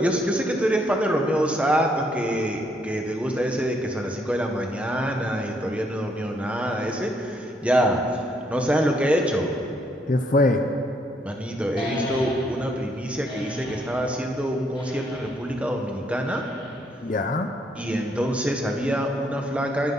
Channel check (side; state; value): both; normal; correlation 0.71